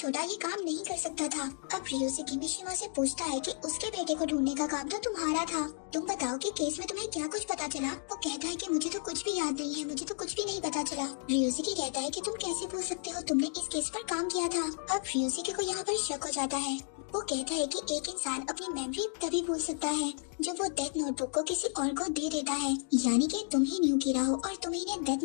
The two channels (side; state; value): right; silent; 56 dB below the other